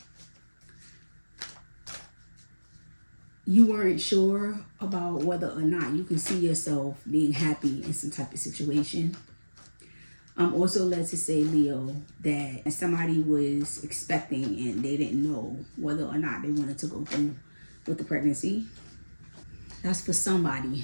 you weren't sure about whether or not you can see yourself being happy in some type of situation. I'm also led to say, Leo, that somebody was expecting and they didn't know whether or not they wanted to go through with the pregnancy. That's for somebody.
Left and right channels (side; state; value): both; inverted; correlation -1.00